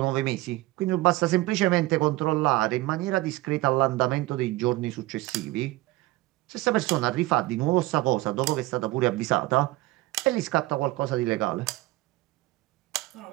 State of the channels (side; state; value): left; quieter; 19.1 dB